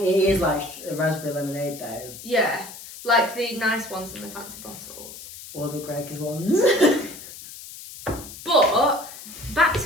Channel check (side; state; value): left; noise; hiss, 14 dB below the sound